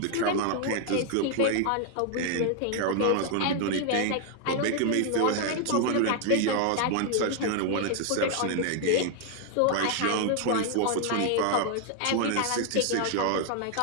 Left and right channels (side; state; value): both; different; correlation 0.00